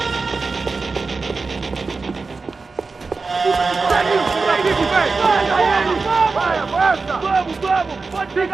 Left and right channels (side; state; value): left; quieter; 4.2 dB